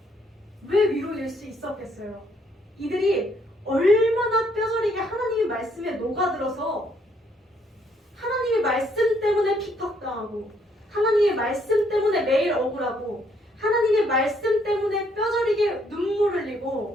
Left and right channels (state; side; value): normal; both; correlation 0.69